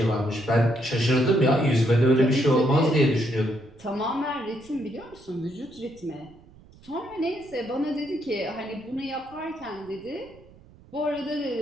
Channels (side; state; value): right; noise; rumble, 25 dB below the sound